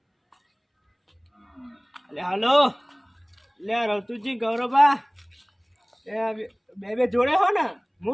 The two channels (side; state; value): both; identical; correlation 1.00